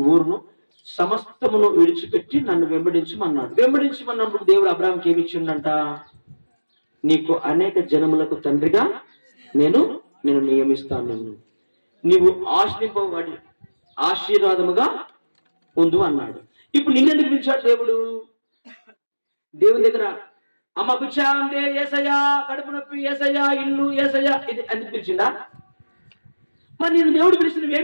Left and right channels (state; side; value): inverted; both; correlation -1.00